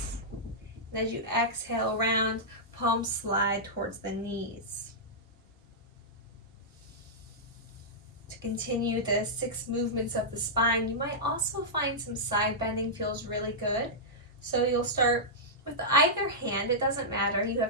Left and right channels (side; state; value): both; normal; correlation -0.11